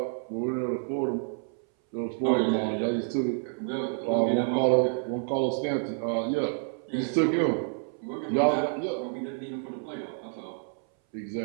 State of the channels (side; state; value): left; silent; 59 dB below the other